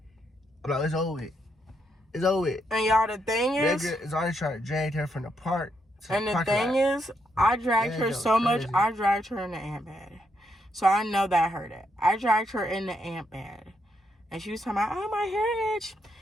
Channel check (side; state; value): both; normal; correlation 0.79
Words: I'm like, it's over with. It's over with. And y'all, the thing is, Zaria tried to drag her from the park to and the the parking thing lot. is, I dragged Yeah, her that so was much, crazy. I dragged her in the ant bed. So I know that hurt it. I dragged her in the ant bed. And she was talking about, oh, my hair itch.